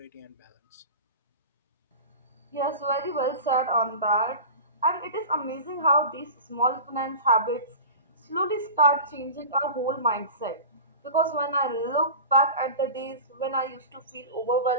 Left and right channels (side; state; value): both; inverted; correlation -0.34